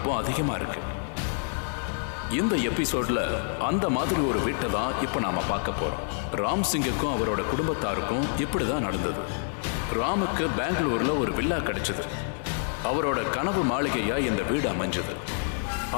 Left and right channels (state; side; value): silent; right; 60 dB below the other